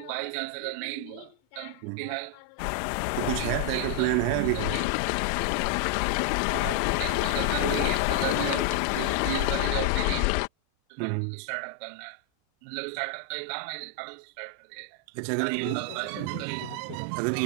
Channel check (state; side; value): different; both; correlation 0.00